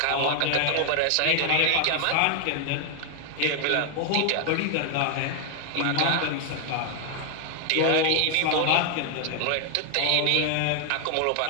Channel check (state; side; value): different; both; correlation 0.00